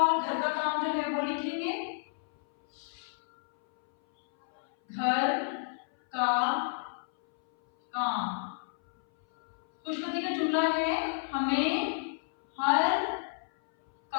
घर का काम जो है वो लिखेंगे। घर का काम। खुशखबरी का जुमला है हमें हर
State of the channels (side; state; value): right; silent; 58 dB below the other